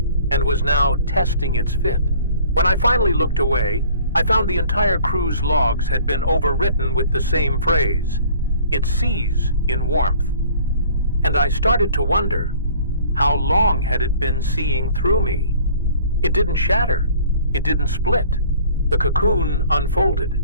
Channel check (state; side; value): inverted; both; correlation -0.51